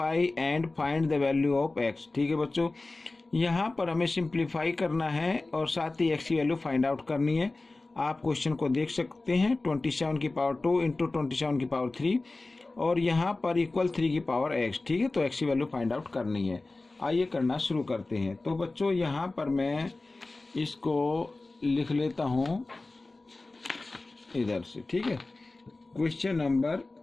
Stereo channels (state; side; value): quieter; right; 3.2 dB